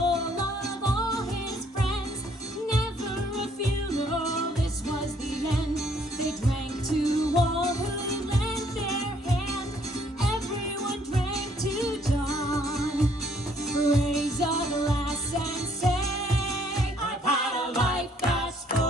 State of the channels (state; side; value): normal; both; correlation 0.65